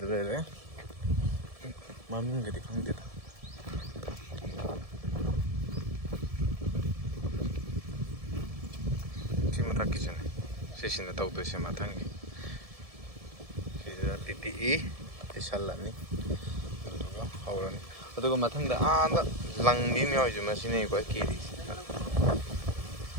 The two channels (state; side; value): late; left; 1.7 ms